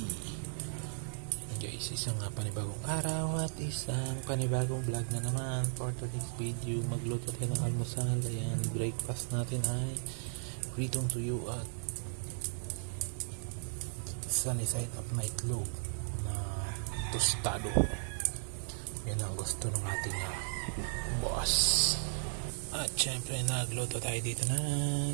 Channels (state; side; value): silent; left; 54 dB below the other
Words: Guys, isang panibagong araw at isang panibagong vlog na naman. For today's video, magluto tayo ng almusal. Ayan, breakfast natin ay pritong tuyo at sunny side up na itlog na tostado. Yan ang gusto ng ating boss. At syempre nagluto tayo dito